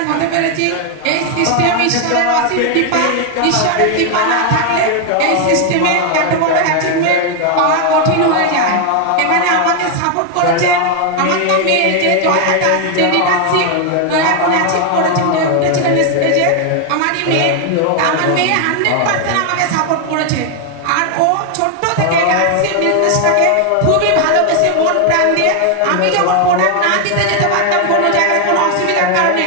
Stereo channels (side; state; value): both; different; correlation 0.01